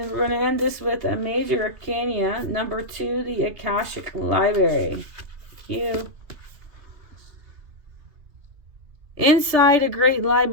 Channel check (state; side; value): late; left; 3.4 ms